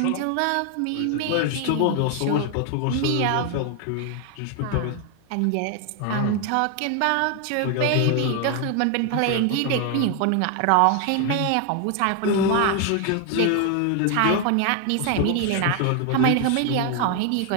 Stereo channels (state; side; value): different; both; correlation 0.01